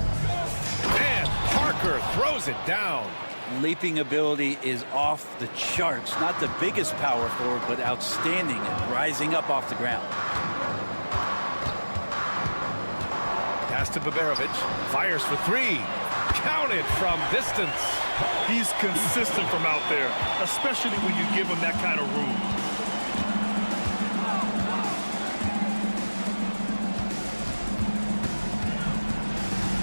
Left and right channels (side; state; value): both; inverted; correlation -1.00